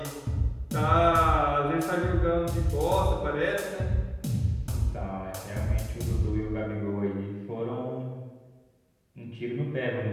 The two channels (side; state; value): both; identical; correlation 1.00